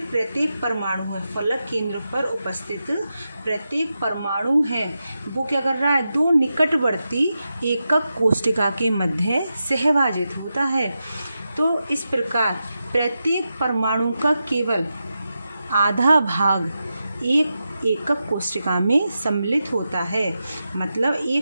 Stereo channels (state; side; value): inverted; both; correlation -0.89